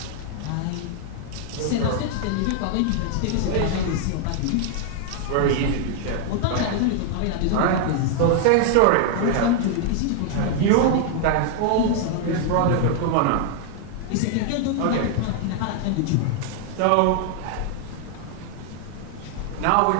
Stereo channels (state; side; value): different; both; correlation 0.00